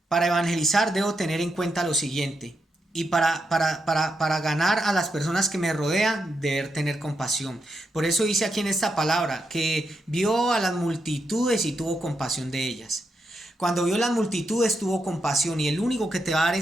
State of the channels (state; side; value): normal; both; correlation 0.83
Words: Para evangelizar debo tener en cuenta lo siguiente. Y para ganar a las personas que me rodean, deber tener compasión. Por eso dice aquí en esta palabra que vio a las multitudes y tuvo compasión de ellas. Cuando vio las multitudes tuvo compasión, y el único que te va a dar